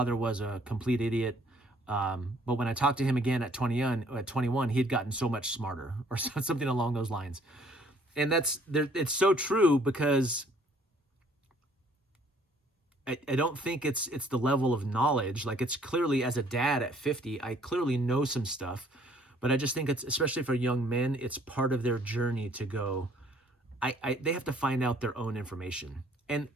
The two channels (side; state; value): both; normal; correlation 0.61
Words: was a complete idiot. But when I talked to him again at 21, he had gotten so much smarter, or something along those lines. And it's so true, because I don't think it's the level of knowledge. Like, it's clearly, as a dad at 50, I clearly know some stuff, but I just think it's, especially for young men, it's part of their journey to go, they have to find out their own information. And